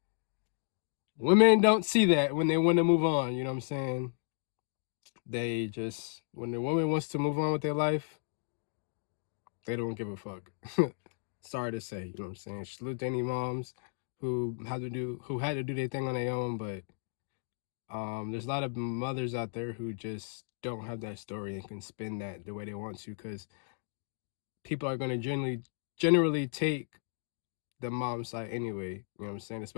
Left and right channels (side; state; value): right; silent; digital silence